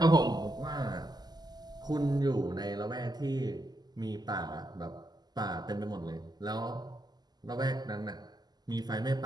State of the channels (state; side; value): late; left; 0.20 ms